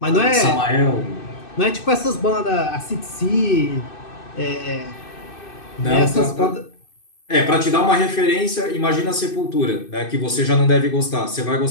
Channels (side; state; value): right; late; 2.6 ms